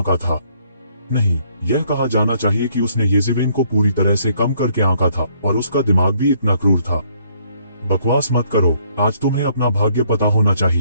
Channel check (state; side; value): inverted; both; correlation -0.66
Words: था। नहीं, यह कहा जाना चाहिए कि उसने येज़िवेन को पूरी तरह से कम करके आंका था, और उसका दिमाग भी इतना क्रूर था। बकवास मत करो, आज तुम्हें अपना भाग्य पता होना